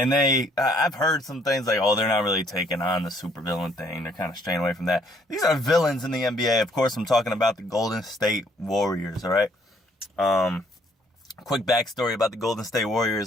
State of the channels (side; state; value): both; normal; correlation 0.65